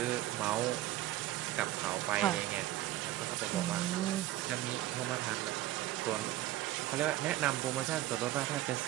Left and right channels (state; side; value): quieter; left; 15.0 dB